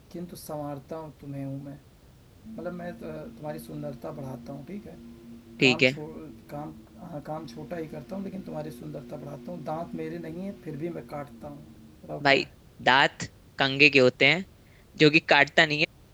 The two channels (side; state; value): both; identical; correlation 1.00